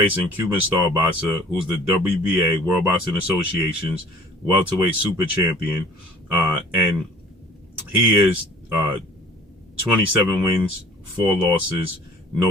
Cuban star boxer, who's the WBA, World Boxing Association's welterweight super champion, and he is 27 wins, 4 losses,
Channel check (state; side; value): normal; both; correlation 0.49